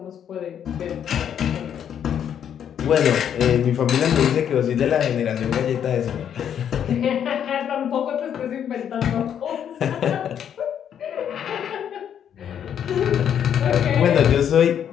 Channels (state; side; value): quieter; right; 9.0 dB